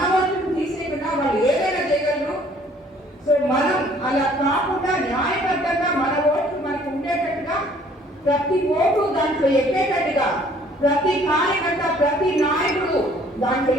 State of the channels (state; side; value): normal; both; correlation 0.58